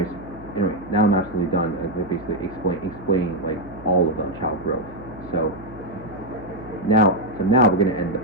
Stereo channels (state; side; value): noise; right; hum, 17 dB below the sound